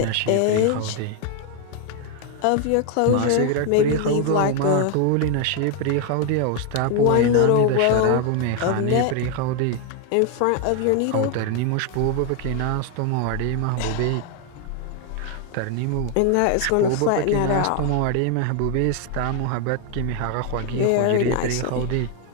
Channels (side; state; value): both; different; correlation 0.01